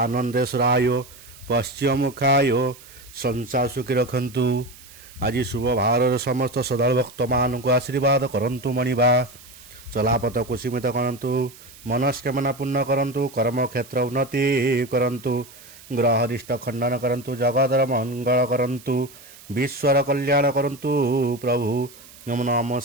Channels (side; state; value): right; noise; hiss, 21 dB below the sound